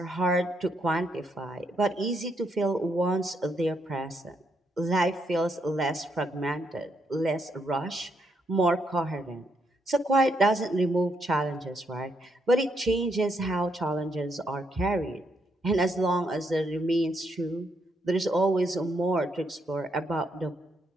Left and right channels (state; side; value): normal; both; correlation 0.77